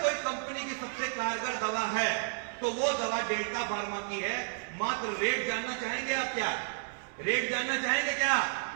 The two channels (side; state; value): left; silent; digital silence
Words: कोई कंपनी की सबसे कारगर दवा है तो वो दवा डेल्टा फार्मा की है। मात्र रेट जानना चाहेंगे आप? क्या रेट जानना चाहेंगे? क्या